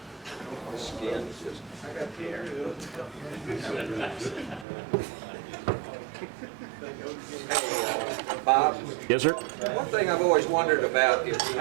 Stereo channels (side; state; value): left; drops out; at 4.7 s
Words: Skin is just... Bob? Yes, sir? One thing I've always wondered about is